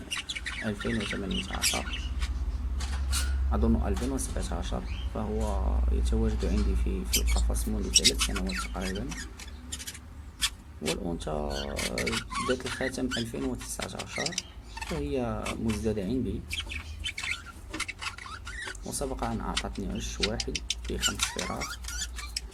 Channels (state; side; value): identical; both; correlation 1.00